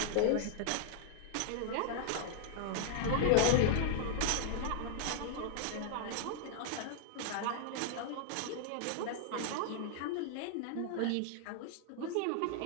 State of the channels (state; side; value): different; both; correlation 0.00